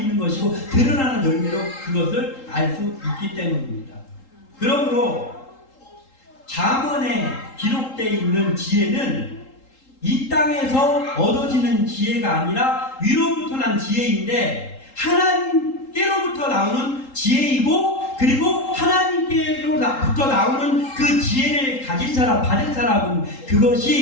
것이고 드러나는 열매로 그것을 알 수 있기 때문입니다. 그러므로 잠언에 기록되어 있는 지혜는 이 땅에서 얻어지는 지혜가 아니라 위로부터 난 지혜인데 하나님께로부터 나오는 지혜이고 그리고 하나님께로부터 나오는 그 지혜를 가진 사람, 받은 사람은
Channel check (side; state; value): right; late; 3.8 ms